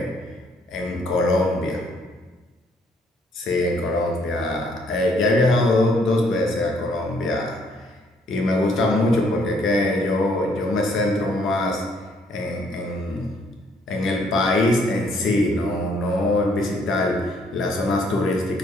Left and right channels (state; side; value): normal; both; correlation 0.66